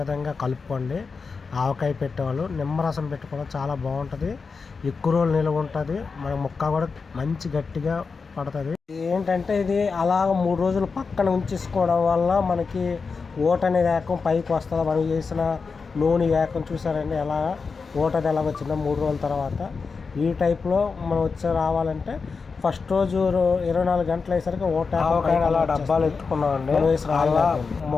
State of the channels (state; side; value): quieter; right; 4.9 dB